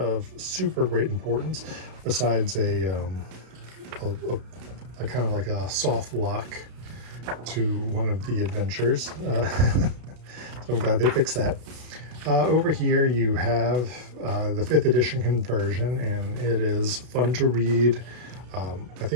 super great importance besides a kind of like a soft lock to one of the adventures. So I'm glad they fixed that. Over here you have the 5th edition conversion, and it is fun to read. I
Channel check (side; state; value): left; late; 32 ms